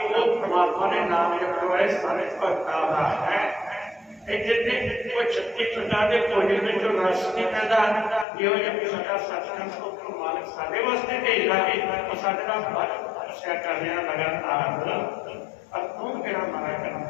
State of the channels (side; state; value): right; drops out; at 8.2 s